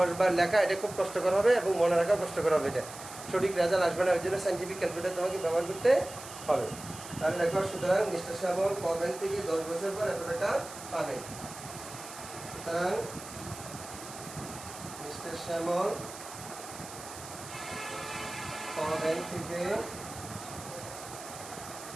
বার লেখা এটা খুব কষ্টকর হবে এবং মনে রাখাও কষ্টকর হবে। এটা সঠিক রেজাল্ট আসবে না, ওই জন্য সাইন্টিফিক ক্যালকুলেটার তোমাকে ব্যবহার করতে হবে। তাহলে দেখো, সুতরাং মিস্টার শ্যামল ক ব্যাংক থেকে 10 বছর পর এত টাকা পাবেন। সুতরাং মিস্টার শ্যামল ক ব্যাংক থেকে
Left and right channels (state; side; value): noise; right; hiss, 13 dB below the sound